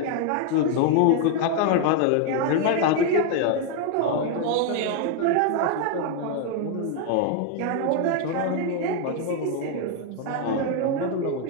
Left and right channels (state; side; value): different; both; correlation 0.01